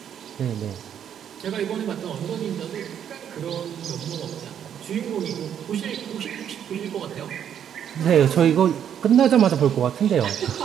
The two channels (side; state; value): left; quieter; 9.1 dB